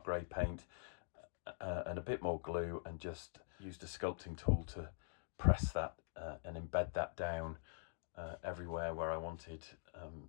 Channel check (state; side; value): silent; right; digital silence